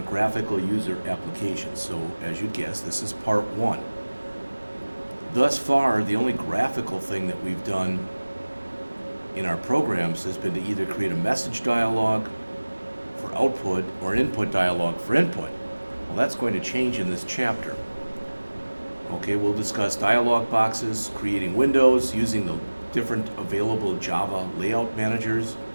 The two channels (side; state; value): both; inverted; correlation -1.00